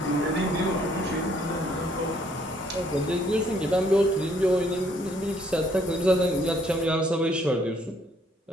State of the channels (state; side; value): normal; both; correlation 0.66